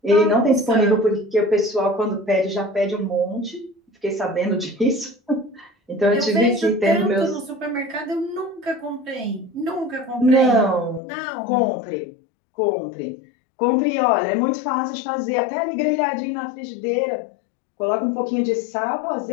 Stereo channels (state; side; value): drops out; right; at 11.0 s